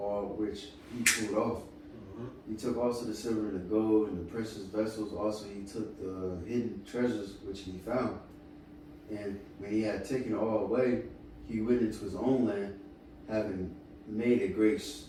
all which he pulled off. He took also the silver and the gold and the precious vessels. Also he took the hidden treasures which he found. And when he had taken all away, he went into his own land, having made a great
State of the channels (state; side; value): identical; both; correlation 1.00